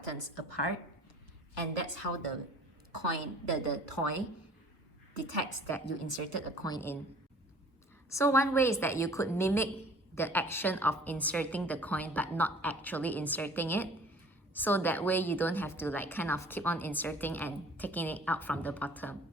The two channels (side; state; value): both; normal; correlation 0.50